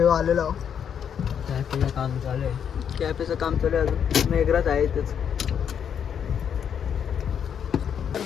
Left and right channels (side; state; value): right; quieter; 8.1 dB